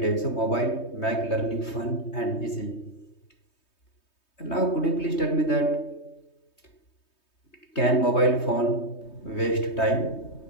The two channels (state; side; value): late; right; 3.2 ms